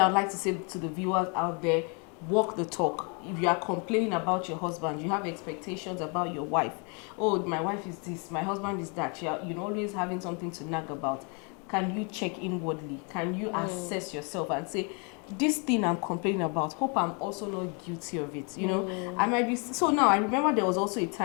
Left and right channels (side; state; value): right; quieter; 35.2 dB